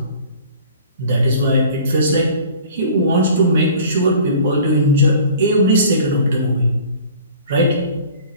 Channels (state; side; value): inverted; both; correlation -0.46